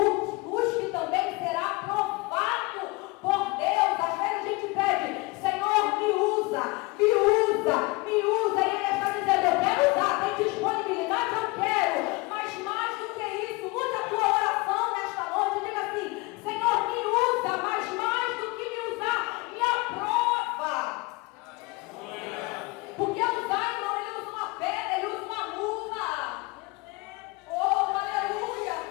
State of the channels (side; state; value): right; quieter; 24.4 dB